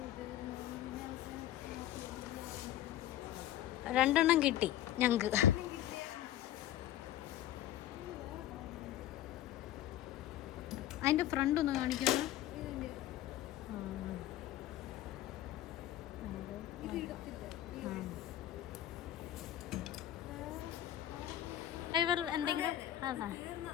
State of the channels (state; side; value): quieter; right; 12.9 dB